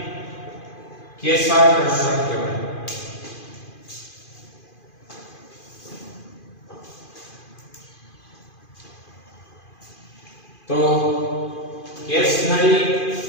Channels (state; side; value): late; right; 2.5 ms